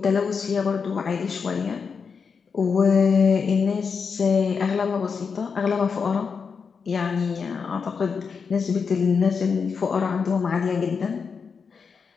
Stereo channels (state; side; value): quieter; right; 5.7 dB